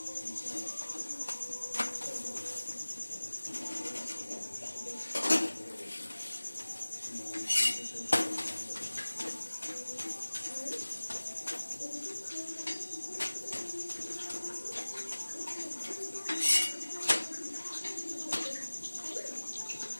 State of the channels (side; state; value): both; inverted; correlation -1.00